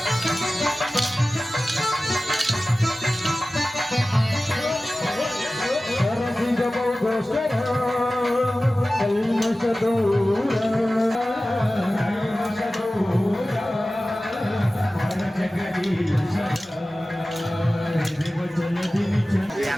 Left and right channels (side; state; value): both; normal; correlation 0.96